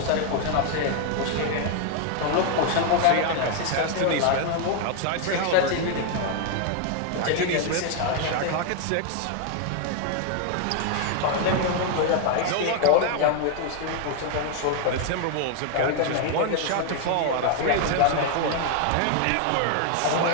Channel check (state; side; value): different; both; correlation 0.00